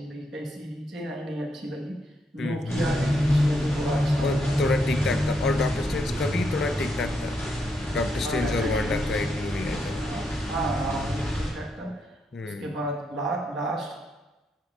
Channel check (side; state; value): both; normal; correlation 0.79